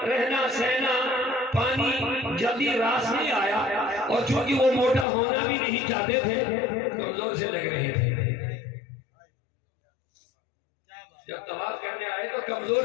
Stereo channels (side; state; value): right; drops out; at 5.1 s